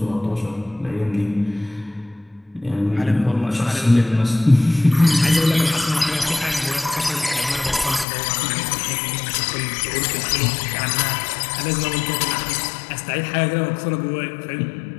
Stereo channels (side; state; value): right; drops out; at 8.1 s